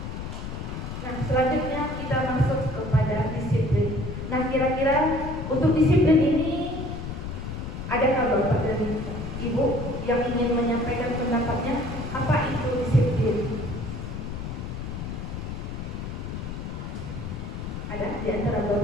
Nah, selanjutnya kita masuk kepada disiplin. Nah, kira-kira untuk disiplin ini adakah Bapak dan Ibu yang ingin menyampaikan pendapatnya? Apa itu disiplin? Ada di antara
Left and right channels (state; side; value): noise; left; rumble, 6 dB below the sound